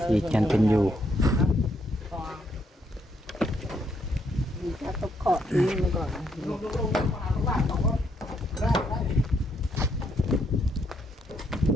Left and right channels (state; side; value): normal; both; correlation 0.74